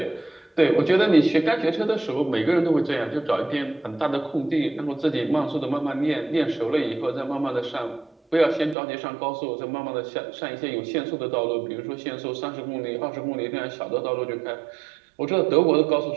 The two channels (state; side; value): drops out; left; at 8.8 s